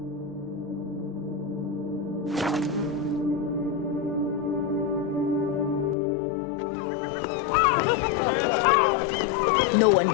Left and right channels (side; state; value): right; drops out; at 6.0 s